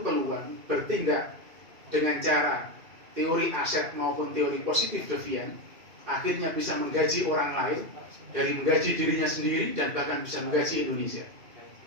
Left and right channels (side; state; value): left; late; 2.4 ms